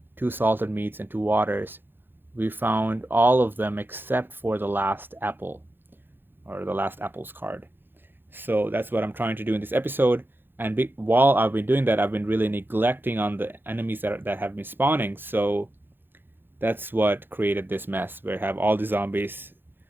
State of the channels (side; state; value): left; late; 0.10 ms